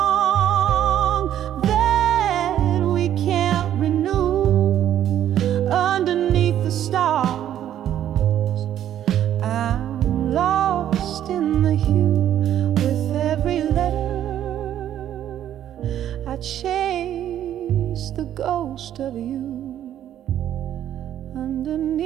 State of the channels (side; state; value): left; quieter; 11.1 dB